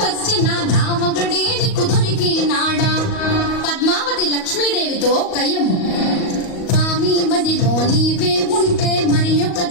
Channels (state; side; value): late; right; 38 ms